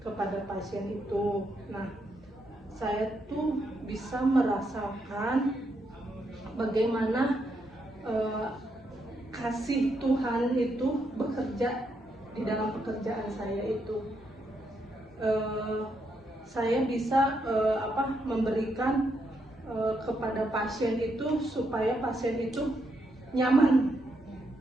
kepada pasien itu. Nah, saya tuh bisa merasakan bagaimana kasih Tuhan itu bekerja di dalam pekerjaan saya itu. Saya bisa memberikan kepada pasien itu supaya pasien itu nyaman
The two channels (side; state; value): both; normal; correlation 0.79